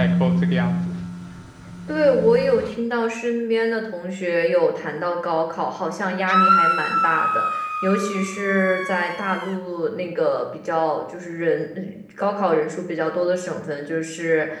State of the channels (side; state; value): both; identical; correlation 1.00